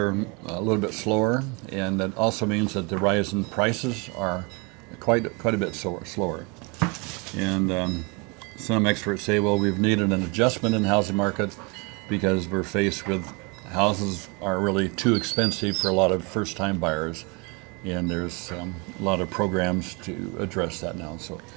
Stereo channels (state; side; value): quieter; left; 30.2 dB